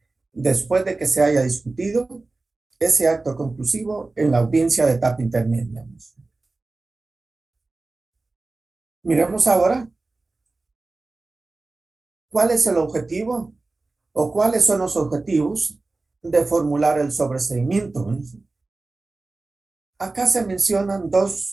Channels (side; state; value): left; quieter; 3.4 dB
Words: después de que se haya discutido ese acto conclusivo en la audiencia de etapa intermedia. Miremos ahora cuál es el objetivo o cuáles son los objetivos de formular el sobreseimiento. Acá se mencionan